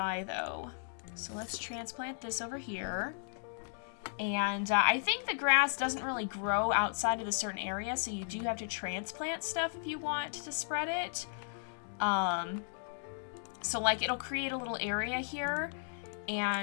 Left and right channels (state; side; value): silent; right; digital silence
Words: though. So let's transplant this over here. And I think the grass doesn't really grow outside of a certain area, so you do have to transplant stuff if you want to spread it. So like it'll create a little area here,